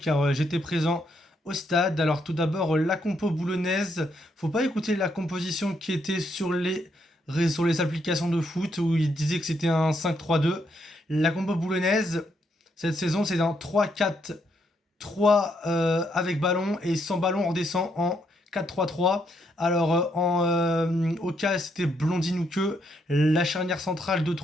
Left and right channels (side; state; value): both; normal; correlation 0.75